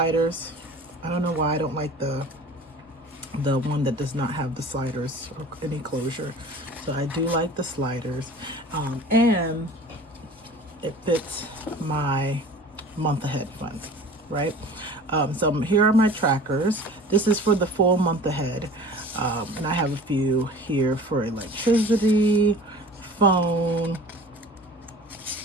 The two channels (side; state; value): both; normal; correlation 0.42